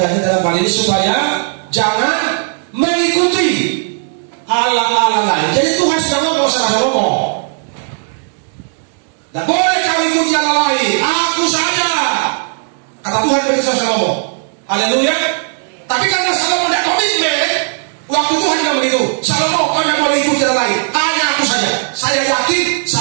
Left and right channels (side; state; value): left; silent; 67 dB below the other